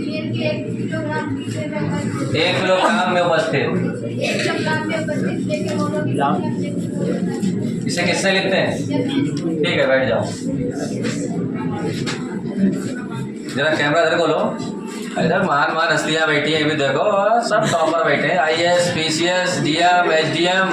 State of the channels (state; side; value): identical; both; correlation 1.00